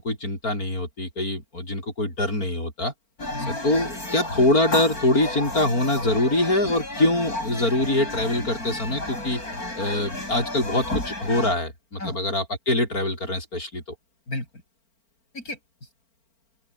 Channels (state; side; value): late; right; 4.4 ms